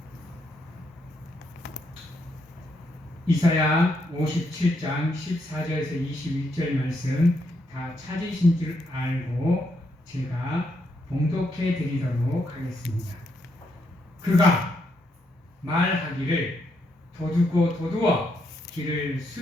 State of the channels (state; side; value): normal; both; correlation 0.78